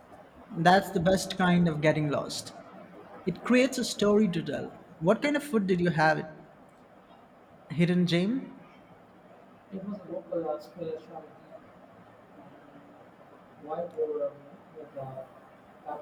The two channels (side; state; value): both; identical; correlation 1.00